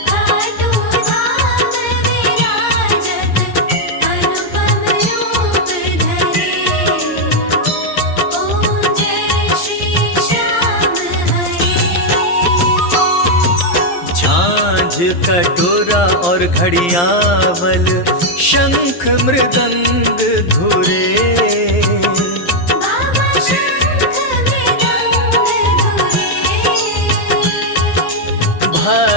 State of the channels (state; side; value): late; right; 11 ms